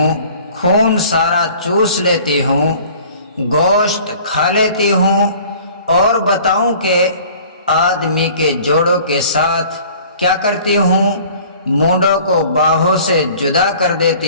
خون سارا چوس لیتی ہوں، گوشت کھا لیتی ہوں، اور بتاؤں کہ آدمی کے جوڑوں کے ساتھ کیا کرتی ہوں؟ مونڈوں کو باہوں سے جدا کر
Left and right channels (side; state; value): both; inverted; correlation -0.49